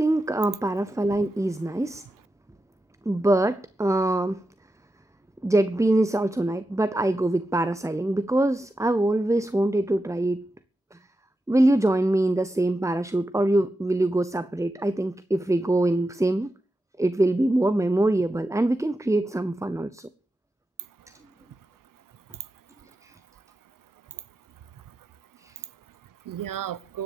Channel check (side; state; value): both; normal; correlation 0.89